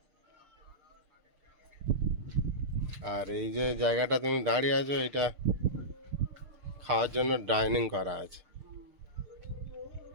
আর এই যে জায়গাটা তুমি দাঁড়িয়ে আছো এটা খাওয়ার জন্য ডাইনিং করা আছে।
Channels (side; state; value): left; late; 6.6 ms